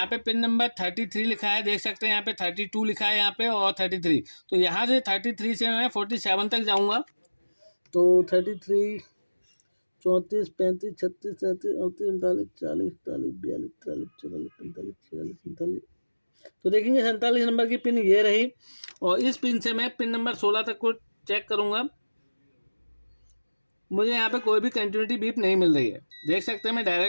पे पिन नंबर 33 लिखा है, देख सकते हैं यहाँ पे 32 लिखा है यहाँ पे और 33। तो यहाँ से 33 से मैं 47 तक जाऊँगा। तो 33 34 35 36 37 38 39 40 41 42 43 44 45 46 47 तो देखेंगे 47 नंबर की पिन ये रही। और इस पिन से मैं पिन नंबर 16 तक को चेक करूंगा। मुझे यहाँ पे कोई भी कंटिन्यूटी बीप नहीं मिल रही है। देख सकते हैं मैं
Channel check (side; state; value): both; inverted; correlation -1.00